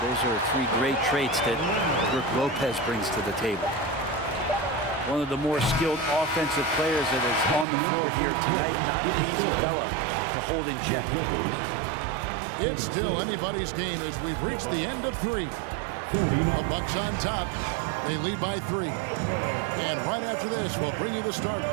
those are 3 great traits that Brook Lopez brings to the table. One of the more skilled offensive players that is on the floor here tonight. Not an easy fella to hold in check. It's still anybody's game as we've reached the end of 3. The Bucks on top. They lead by 3. And right after this, we'll bring you the start.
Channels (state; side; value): drops out; left; at 7.7 s